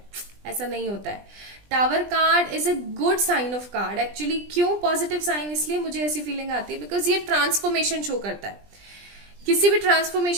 ऐसा नहीं होता है। Tower card is a good sign of card actually. क्यों पॉजिटिव साइन? इसलिए मुझे ऐसी फीलिंग आती है बिकॉज ये ट्रांसफॉर्मेशन शो करता है। किसी भी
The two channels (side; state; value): left; late; 20 ms